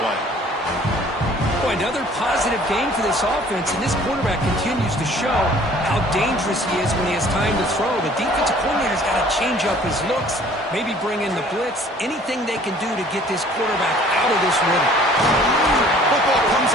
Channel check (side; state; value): both; normal; correlation 0.54